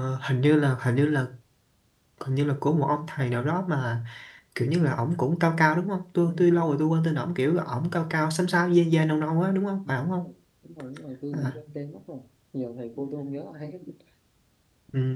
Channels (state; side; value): identical; both; correlation 1.00